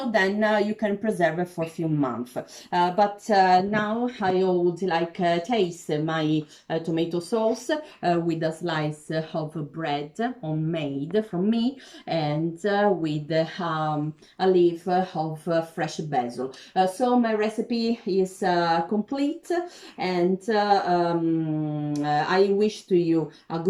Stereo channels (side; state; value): both; identical; correlation 1.00